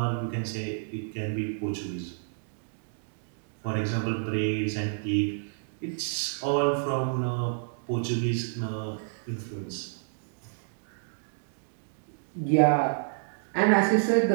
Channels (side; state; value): left; silent; digital silence